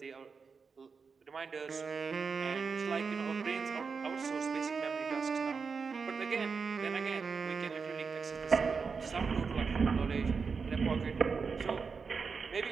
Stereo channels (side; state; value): left; quieter; 5.2 dB